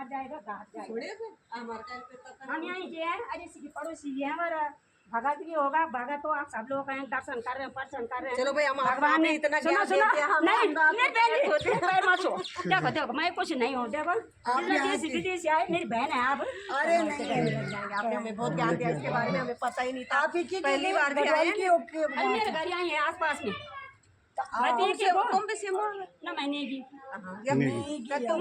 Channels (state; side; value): identical; both; correlation 1.00